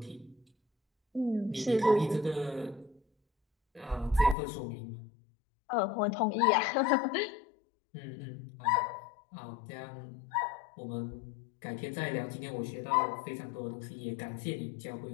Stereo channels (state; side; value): drops out; right; at 4.4 s